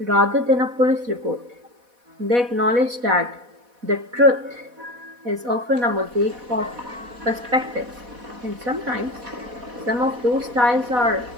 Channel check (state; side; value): late; left; 4.1 ms